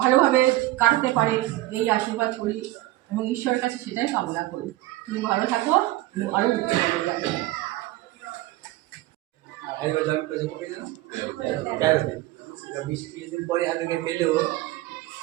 কাটাতে পারে, এই আশীর্বাদ করি এবং ঈশ্বরের কাছে সেটাই কামনা করি। তুমি ভালো থাকো, আরও উচ্চ পদে যাবে।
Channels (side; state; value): left; quieter; 17.3 dB